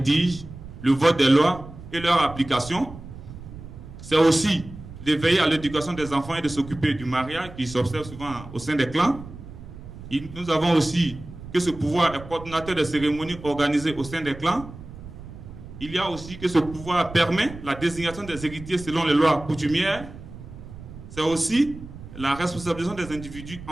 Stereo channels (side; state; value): right; noise; rumble, 14 dB below the sound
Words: le vote des lois et leur application. C'est aussi de veiller à l'éducation des enfants et de s'occuper du mariage qui s'observe souvent au sein des clans. Nous avons aussi que ce pouvoir est coordonnateur des cérémonies organisées au sein des clans. Il y a aussi que ce pouvoir permet la désignation des héritiers selon les lois coutumières. C'est aussi la responsabilisation des individus